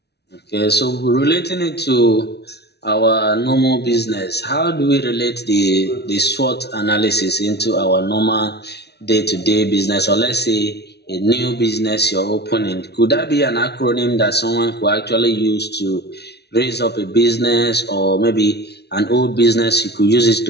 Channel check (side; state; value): right; late; 0.49 ms